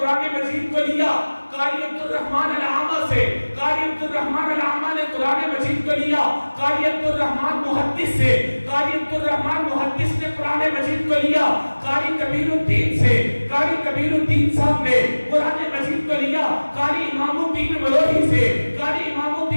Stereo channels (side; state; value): both; inverted; correlation -1.00